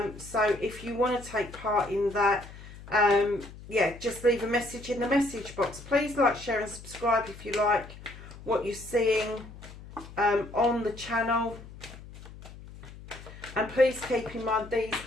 So if you want to take part in that, yeah, just leave a message in the message box. Please like, share and subscribe if you like what you're seeing on the channel. And please keep in mind, these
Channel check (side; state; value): left; noise; hum, 16 dB below the sound